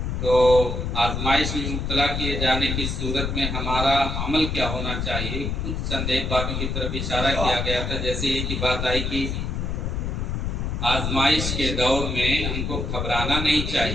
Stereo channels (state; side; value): noise; left; rumble, 2 dB below the sound